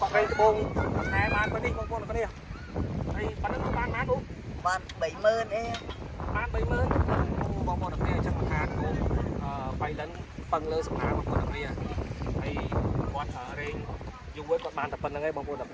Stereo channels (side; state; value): both; identical; correlation 1.00